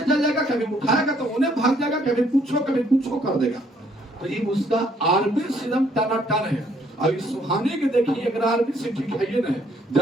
जाएगा, कभी उठाएगा तो उन्हें भाग जाएगा, कभी कुछ कर देगा। तो ये उसका आरबीसी एकदम टनाटन है। अब इस सुहानी के देखिए अगर आरबीसी ठीक है ना,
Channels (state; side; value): normal; both; correlation 0.66